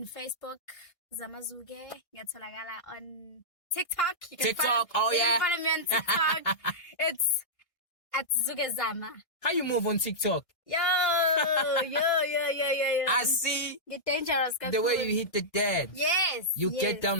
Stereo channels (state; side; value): late; right; 1.6 ms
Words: Facebook, Zamazuge. Ngiyatholakala on TikTok. TikTok. You can follow me on TikTok. It's at Zuge Zama. How you move on TikTok? Yo. I see. You're dangerous. The way you hit the dead. Yes. You get down